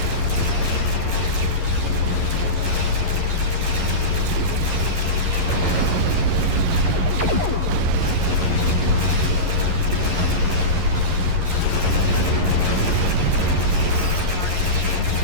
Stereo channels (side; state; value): left; late; 11 ms